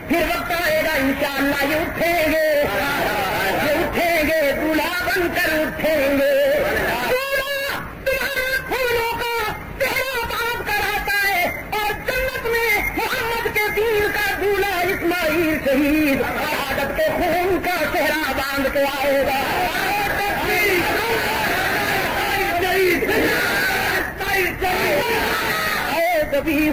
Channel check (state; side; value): identical; both; correlation 1.00